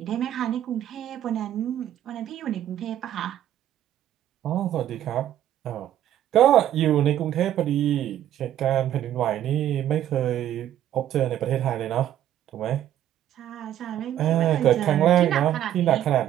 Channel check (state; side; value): quieter; left; 11.6 dB